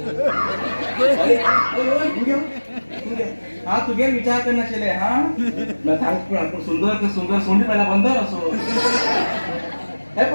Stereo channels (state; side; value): inverted; both; correlation -1.00